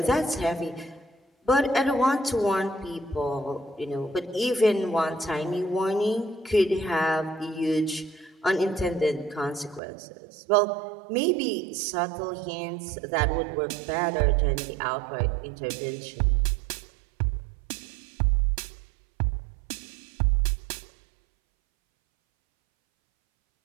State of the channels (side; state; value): left; drops out; at 9.8 s